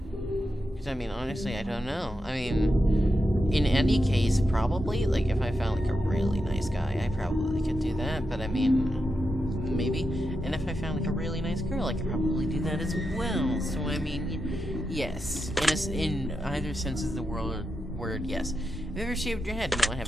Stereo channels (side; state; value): both; normal; correlation 0.87